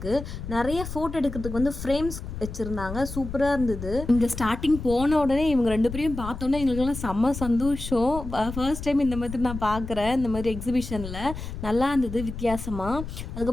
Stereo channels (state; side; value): noise; left; rumble, 9 dB below the sound